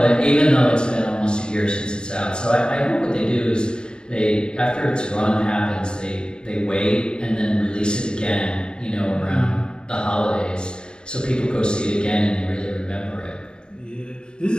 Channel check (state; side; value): late; right; 0.049 ms